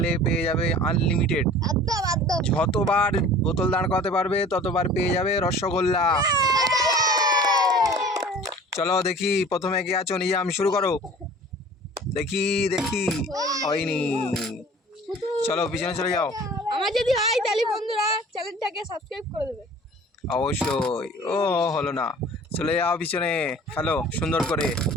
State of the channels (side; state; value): both; normal; correlation 0.45